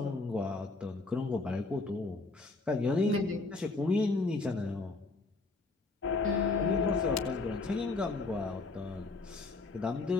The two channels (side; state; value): right; quieter; 3.5 dB